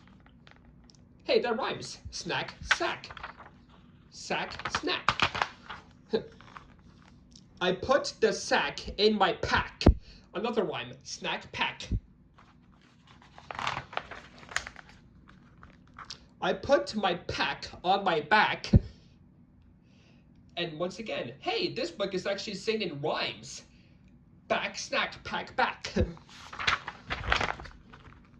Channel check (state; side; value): identical; both; correlation 1.00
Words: Hey, that rhymes. Snack, sack. Sack, snack. I put the sack in my pack. Another rhyme. Snack, pack. I put my pack on my back. And once again, hey, this book is actually singing rhymes. Back, snack, pack, back.